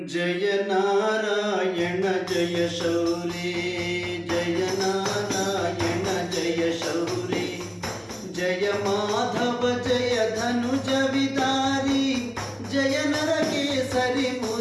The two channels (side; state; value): both; identical; correlation 1.00